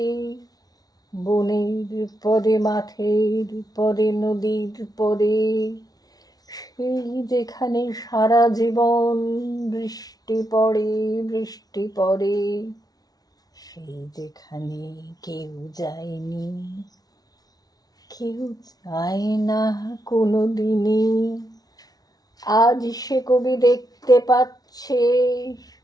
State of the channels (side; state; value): right; late; 0.19 ms